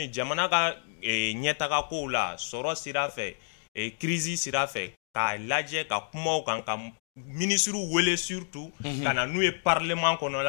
jamana ka nyetaka ko la soro sira fait et crise sira fait ka lajɛ ka kumaw kan ka ministre wele surtout kana n'u ye parlement kɔnɔ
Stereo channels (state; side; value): silent; right; digital silence